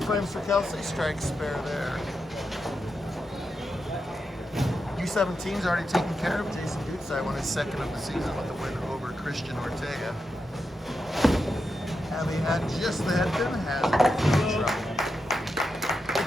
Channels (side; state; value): both; normal; correlation 0.87